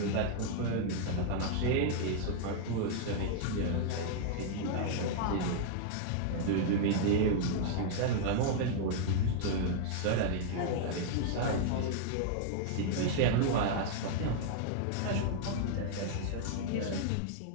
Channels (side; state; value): both; different; correlation -0.01